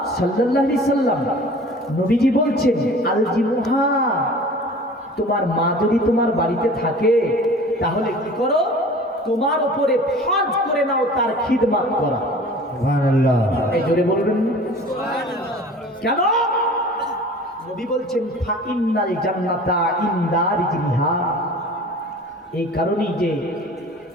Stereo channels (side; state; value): both; normal; correlation 0.43